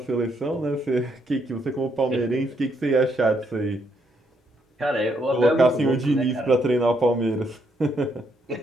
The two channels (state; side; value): normal; both; correlation 0.74